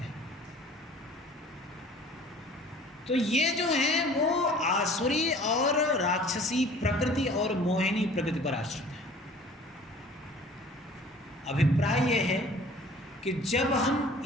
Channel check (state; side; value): normal; both; correlation 0.49